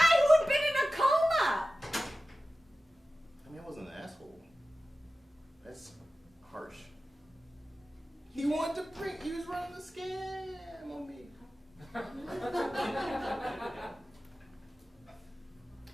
who had been in a coma! I mean, I wasn't an asshole. That's harsh. He wanted to print. He was running the scam on me.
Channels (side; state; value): both; normal; correlation 0.95